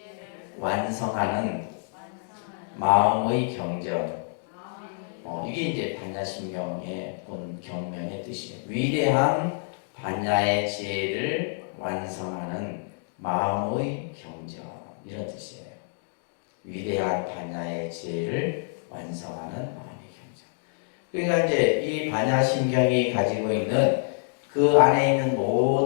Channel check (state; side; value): silent; right; digital silence